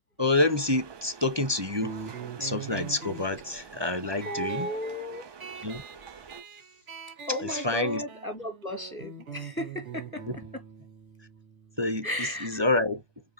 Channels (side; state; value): left; late; 1.2 ms